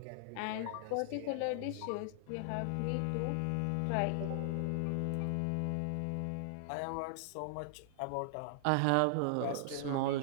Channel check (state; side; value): different; both; correlation -0.01